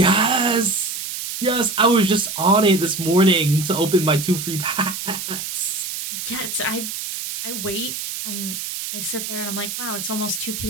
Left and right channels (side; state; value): right; noise; hiss, 6 dB below the sound